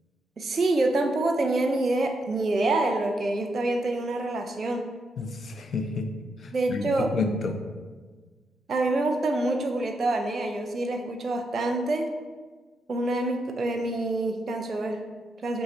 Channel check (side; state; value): both; normal; correlation 0.81